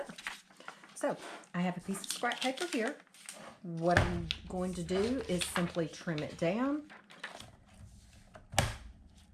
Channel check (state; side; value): identical; both; correlation 1.00